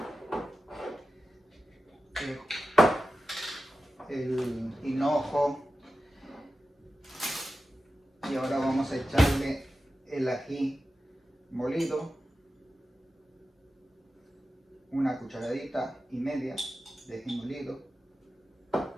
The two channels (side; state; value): both; normal; correlation 0.93